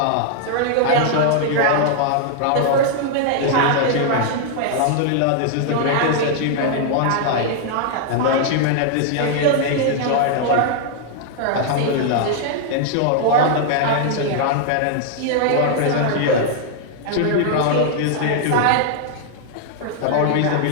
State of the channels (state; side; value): different; both; correlation -0.01